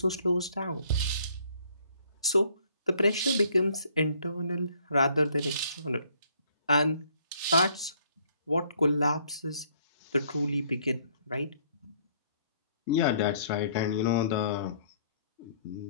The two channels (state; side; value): inverted; both; correlation -0.63